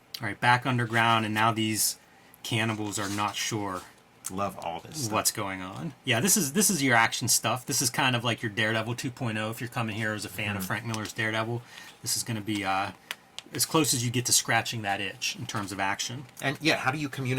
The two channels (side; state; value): both; identical; correlation 1.00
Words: All right, back underground, and now these cannibals are not sure Love all this stuff. what's going on. Yeah, this is your action stuff. This is kind of like your Daredevil 2.0. If you're coming here as a fan of Frank Miller's Daredevil, this is going to be as close as you get to scratching that itch in terms of action. And yeah, how do you